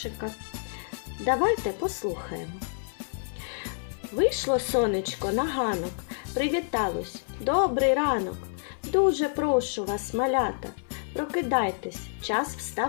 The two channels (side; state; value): right; silent; 59 dB below the other